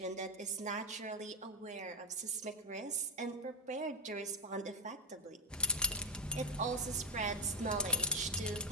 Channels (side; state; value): both; normal; correlation -0.01